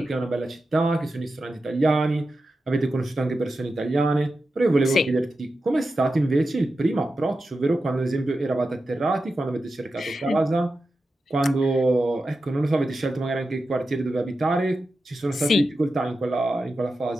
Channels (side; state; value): both; normal; correlation 0.91